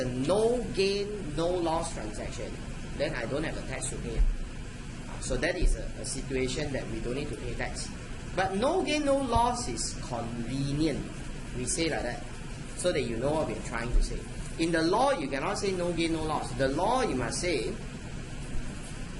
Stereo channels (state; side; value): identical; both; correlation 1.00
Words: no gain, no loss transaction, then I don't have a tax to pay. So that is a situation that we don't need to pay tax. But no gain, no loss is convenient. We say like that, so that you know what we're trying to say. In the law, you cannot say no gain, no loss. The law, you must say